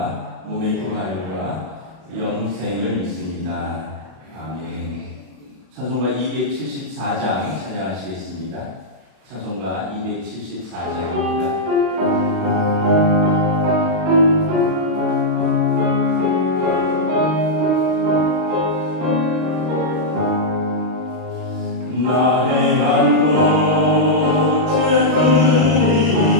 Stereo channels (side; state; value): left; late; 32 ms